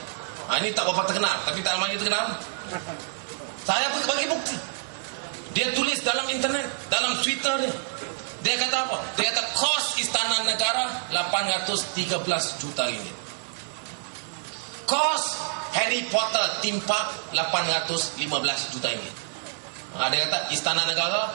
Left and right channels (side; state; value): left; silent; 60 dB below the other